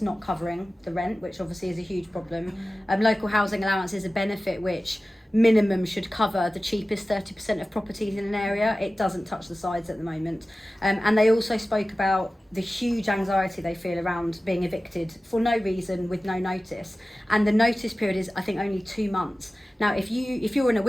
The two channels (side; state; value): both; normal; correlation 0.96